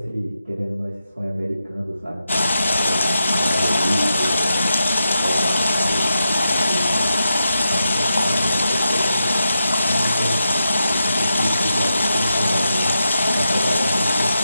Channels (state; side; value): inverted; both; correlation -0.86